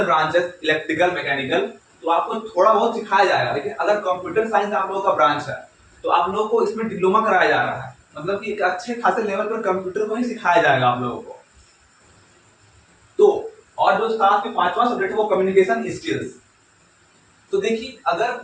ब्रांचेस इलेक्ट्रिकल मैकेनिकल तो आपको थोड़ा बहुत सिखाया जाएगा, लेकिन अगर कंप्यूटर साइंस आप लोगों का ब्रांच है तो आप लोगों को इसमें डिप्लोमा कराया जा रहा है, मतलब कि एक अच्छे खासे लेवल पर कंप्यूटर को ही सिखाया जाएगा आप लोगों को। तो और जो साथ में पांचवा सब्जेक्ट है वो कम्युनिकेशन स्किल्स। तो देखिए अगर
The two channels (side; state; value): both; identical; correlation 1.00